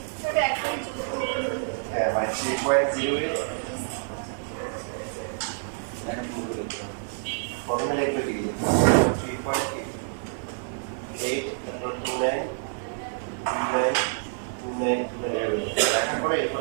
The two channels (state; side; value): silent; left; 56 dB below the other